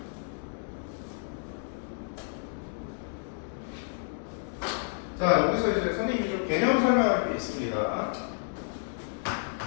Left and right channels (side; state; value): right; silent; 57 dB below the other